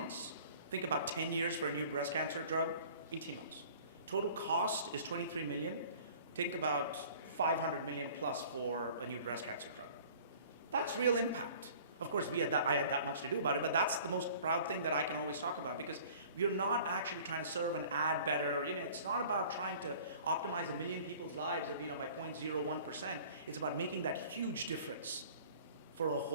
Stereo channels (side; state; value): both; inverted; correlation -0.48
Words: Think about 10 years for a new breast cancer drug, 18 months. Total cost is $23 million. Think about $500 million plus for a new breast cancer drug. That's real impact. Of course, I had that much to do about it, but that's the most proud thing that I can always talk about, because we're not actually trying to serve and add better. It's not about trying to optimize 1 million people's lives by 0.01%. It's about making that huge difference for a